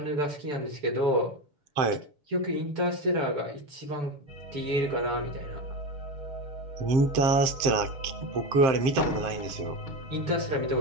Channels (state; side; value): late; left; 7.5 ms